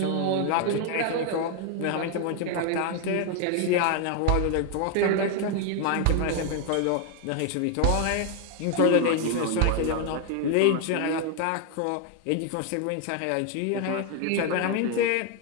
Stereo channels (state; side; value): different; both; correlation 0.01